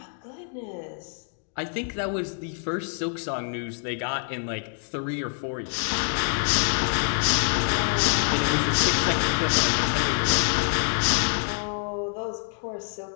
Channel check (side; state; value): right; silent; 61 dB below the other